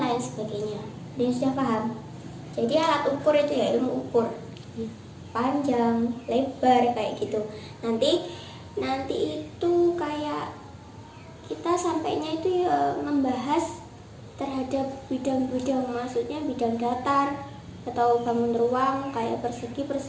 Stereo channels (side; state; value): both; identical; correlation 1.00